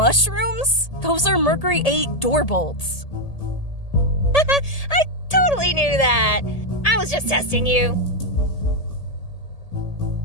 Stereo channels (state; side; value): late; right; 1.8 ms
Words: Those are Mercury 8 door bolts. I totally knew that. I was just testing you.